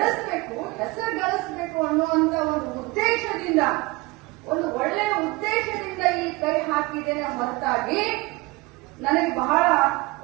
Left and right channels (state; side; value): quieter; left; 22.9 dB